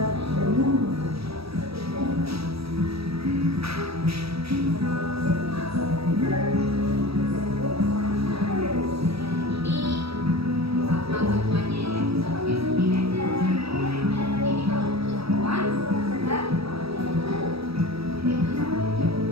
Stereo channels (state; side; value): late; left; 0.77 ms